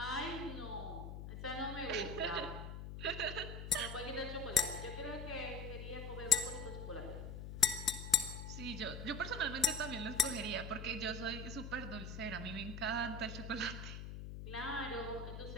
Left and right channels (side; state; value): left; noise; hum, 8 dB below the sound